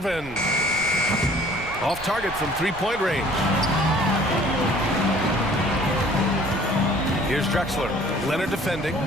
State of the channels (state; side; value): noise; right; rumble, 16 dB below the sound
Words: Off target from three-point range. Here's Drexler. Leonard defending.